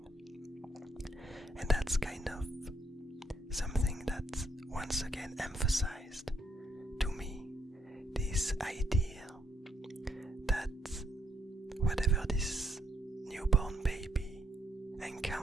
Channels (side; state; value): both; normal; correlation 0.73